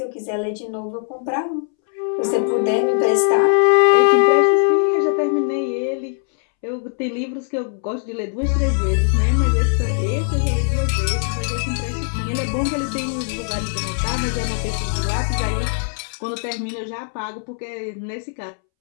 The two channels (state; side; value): silent; right; 65 dB below the other